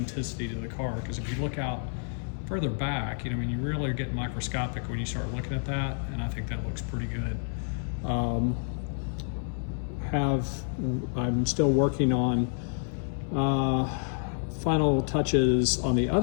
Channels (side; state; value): right; silent; 59 dB below the other